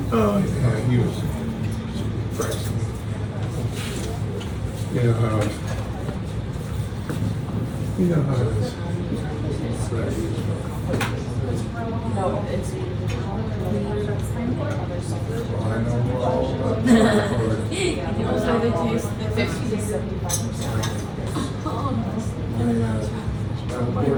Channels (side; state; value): both; identical; correlation 1.00